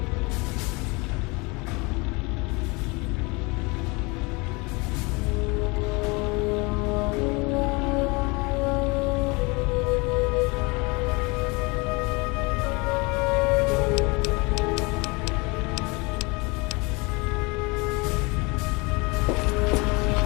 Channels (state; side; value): quieter; right; 27.3 dB